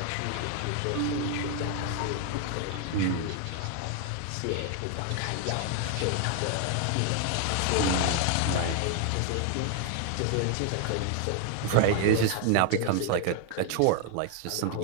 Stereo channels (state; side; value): different; both; correlation 0.00